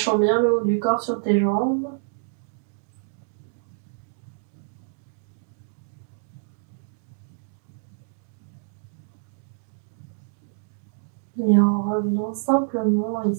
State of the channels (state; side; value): silent; left; digital silence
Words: bien le haut du corps sur tes jambes. Et en revenant simplement